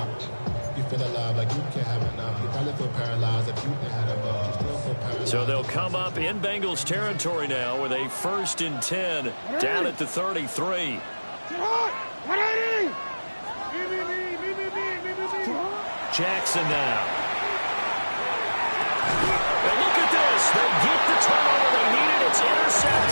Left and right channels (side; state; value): both; inverted; correlation -1.00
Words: You feel alive like you can't have enough. You probably feel paralyzed if you had a bug. You still feel paralyzed. So they'll come up in Bengals territory now with a 1st and 10 down at the 33. Jackson now. And look at this. They get the turnover they needed. It's